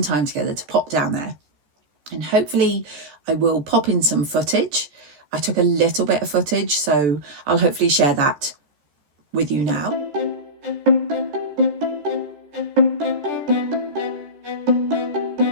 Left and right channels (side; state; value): left; late; 14 ms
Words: time together to pop down there. And hopefully I will pop in some footage. I took a little bit of footage, so I'll hopefully share that with you now.